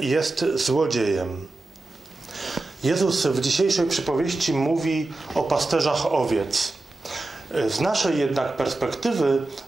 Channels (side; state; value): left; quieter; 3.1 dB